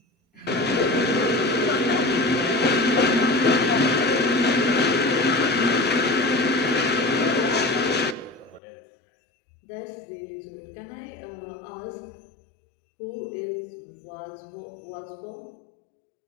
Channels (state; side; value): drops out; right; at 8.6 s